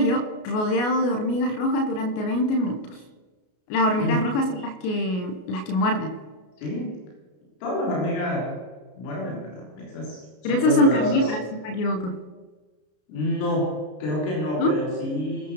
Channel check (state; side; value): late; right; 33 ms